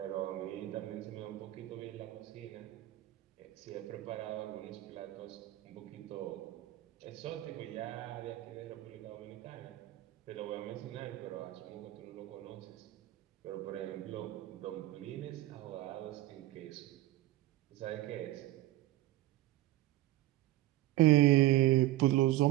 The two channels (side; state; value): left; quieter; 15.9 dB